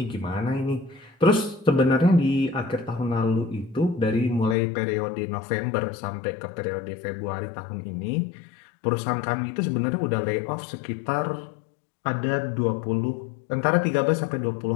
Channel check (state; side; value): drops out; right; at 4.5 s